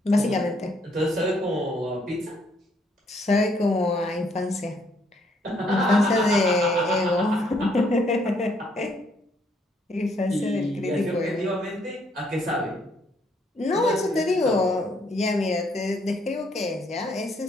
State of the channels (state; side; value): normal; both; correlation 0.69